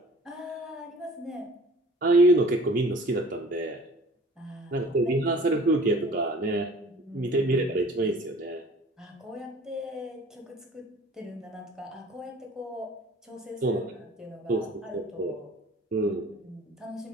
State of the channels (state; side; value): normal; both; correlation 0.48